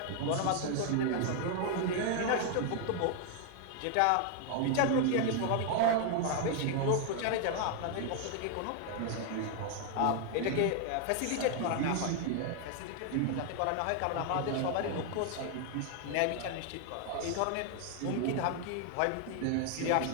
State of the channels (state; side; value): different; both; correlation 0.00